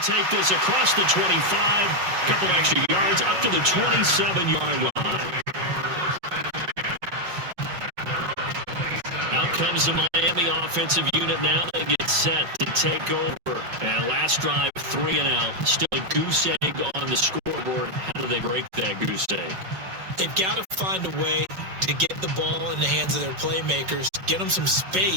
this across the 25, a couple extra yards up to the 27-yard line. Out comes the Miami offensive unit now. They get set to take over. And last drive, 3 and out. Still a goose egg on the scoreboard. How do they break that goose egg? They've got to find a way to get the ball in the hands of their playmakers, get them some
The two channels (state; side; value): late; left; 5.4 ms